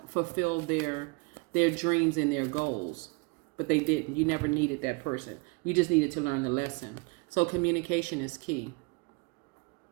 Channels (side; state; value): left; quieter; 28.8 dB